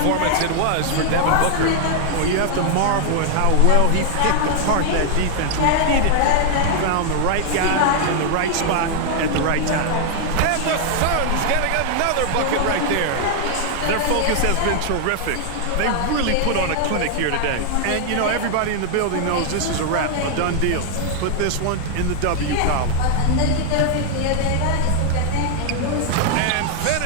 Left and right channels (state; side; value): different; both; correlation 0.00